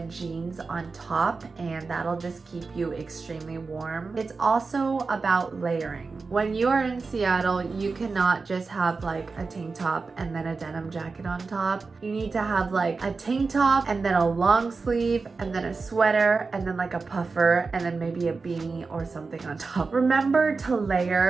jeans on top, and that'll just keep you extremely warm. It's also about layering. When you are in Seattle, you cannot just have like a tank top and then a denim jacket on top. You need to have like a tank top and then a long sleeve and then a sweater and then like a puffer and then maybe a beanie or something on top. Remember to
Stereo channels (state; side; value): quieter; left; 4.3 dB